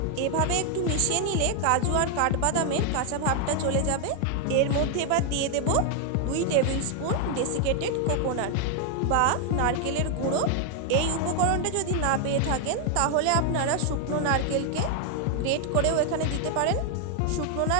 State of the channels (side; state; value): both; different; correlation 0.00